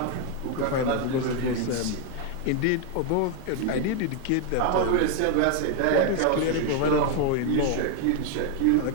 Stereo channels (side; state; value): both; different; correlation 0.01